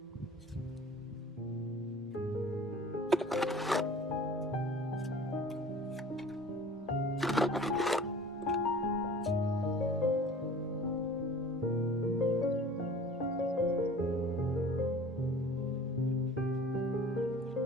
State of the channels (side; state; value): both; normal; correlation 0.45